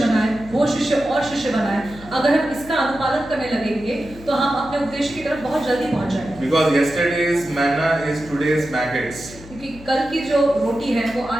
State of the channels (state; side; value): noise; left; hum, 18 dB below the sound